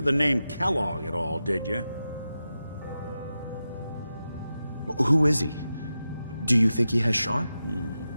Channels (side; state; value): both; inverted; correlation -0.91